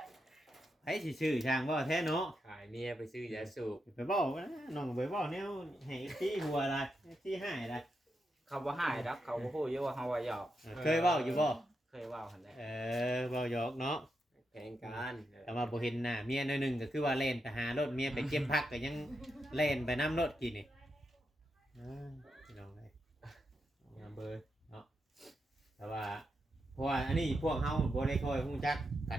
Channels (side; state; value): both; normal; correlation 0.85